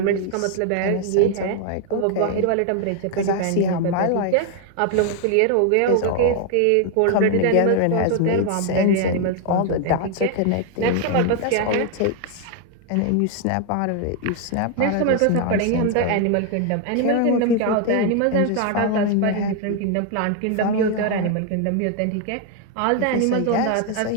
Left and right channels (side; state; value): both; different; correlation 0.00